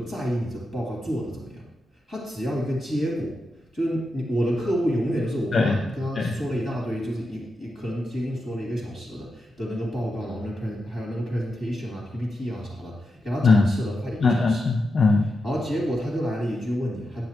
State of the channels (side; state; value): both; normal; correlation 0.88